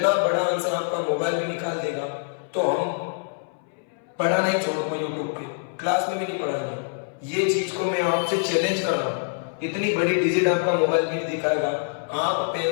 बड़ा आंसर आपका मोबाइल में निकाल देगा। तो हम पढ़ाना ही छोड़ूंगा, यूट्यूब पे क्लास में भी नहीं पढ़ाएंगे, ये चीज को मैं आपसे चैलेंज कर रहा हूँ। इतनी बड़ी डिजिट आपका मोबाइल भी नहीं दिखाएगा, आप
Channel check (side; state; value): right; silent; 61 dB below the other